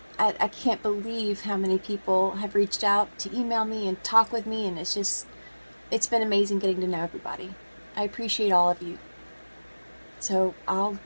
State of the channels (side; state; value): both; inverted; correlation -1.00